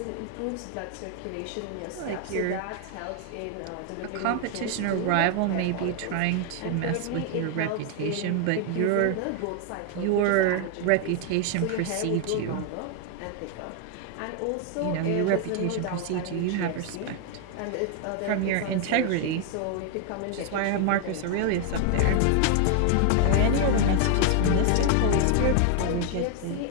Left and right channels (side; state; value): both; different; correlation 0.00